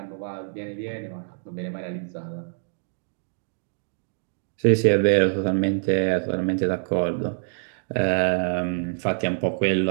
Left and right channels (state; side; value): silent; left; digital silence